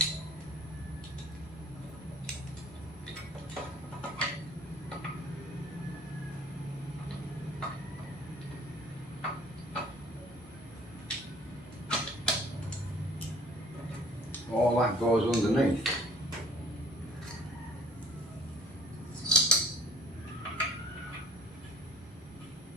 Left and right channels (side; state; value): both; normal; correlation 0.52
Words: all that goes underneath.